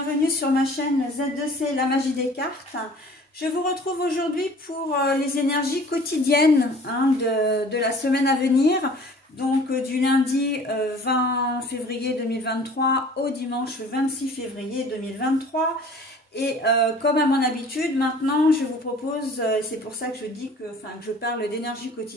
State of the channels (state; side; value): normal; both; correlation 0.48